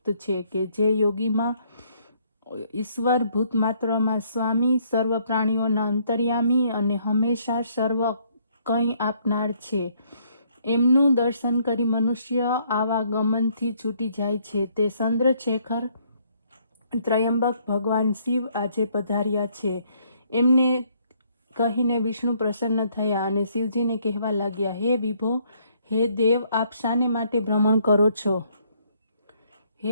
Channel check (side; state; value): both; inverted; correlation -0.67